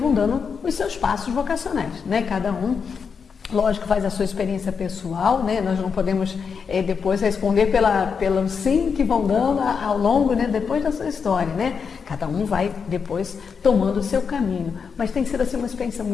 dando os seus passos vocacionais, né? Cada um, lógico, faz a sua experiência pessoal, né? Nós não podemos depois responder pelo sim que vão dando ao longo, né? Depois da sua história, né? Cada um vai depois tomando o seu caminho, mas tem sido assim uma experiência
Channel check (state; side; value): quieter; right; 6.0 dB